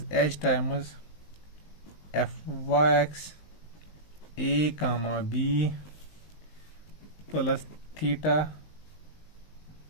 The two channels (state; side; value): late; right; 19 ms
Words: H times F Y x ए comma B plus theta